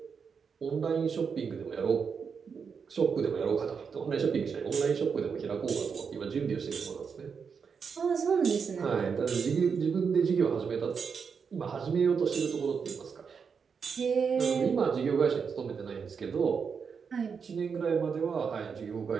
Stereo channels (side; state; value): left; quieter; 6.1 dB